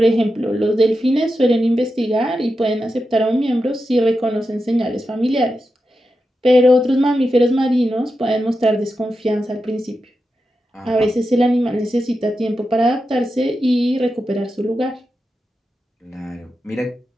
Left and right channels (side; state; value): both; normal; correlation 0.89